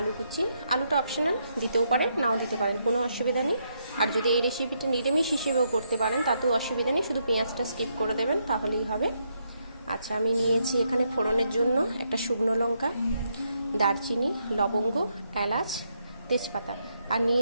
কুচি। আলুটা অপশনাল, দিতেও পারেন নাও দিতে পারেন, কোনো অসুবিধা নেই। আর যদি এই রেসিপিটা নিরামিষ হিসেবেও করতে পারেন তাতেও অসুবিধা নেই, শুধু পেঁয়াজটা স্কিপ করে দেবেন তাহলেই হবে। আচ্ছা, আমি নিয়েছি এখানে ফোড়নের জন্য একটা শুকনো লঙ্কা, দারচিনি, লবঙ্গ, এলাচ, তেজপাতা, আর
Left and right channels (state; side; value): inverted; both; correlation -0.77